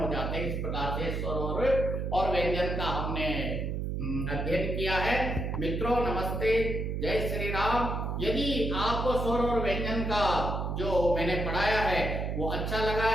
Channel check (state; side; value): noise; right; hum, 2 dB below the sound